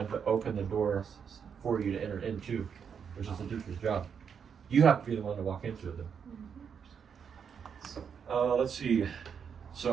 to open the door for you to enter into, which is the teacher's job. You have to be the one to walk into it though. Let's see.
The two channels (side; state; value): left; quieter; 7.0 dB